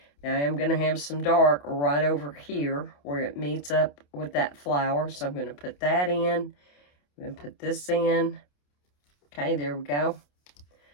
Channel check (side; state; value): right; late; 28 ms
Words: Now, I am going to have some dark right over here where it meets up with that flower. So I'm going to put that in. I'm going to put this in. Okay, there we go.